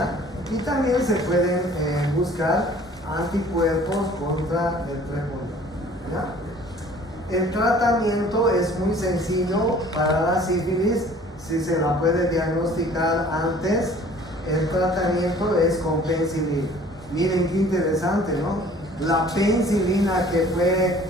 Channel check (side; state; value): both; normal; correlation 0.51